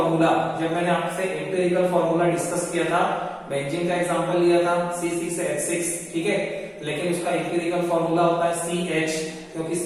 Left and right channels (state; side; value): identical; both; correlation 1.00